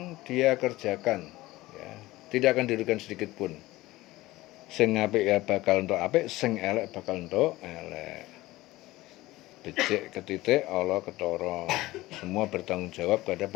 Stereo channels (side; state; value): right; quieter; 18.3 dB